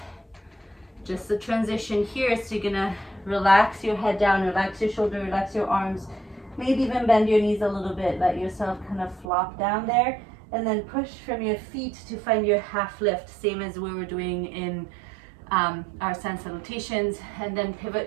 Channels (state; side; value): drops out; left; at 9.3 s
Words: Just the transition here, so you're gonna relax your head down, relax your shoulder, relax your arms, maybe even bend your knees a little bit, let yourself kind of flop down there, and then push from your feet to find your half lift, same as we were doing in our sun salutations, and then